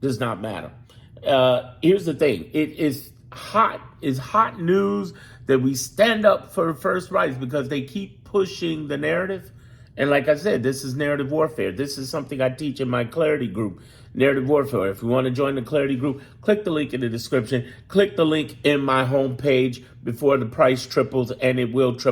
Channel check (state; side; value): identical; both; correlation 1.00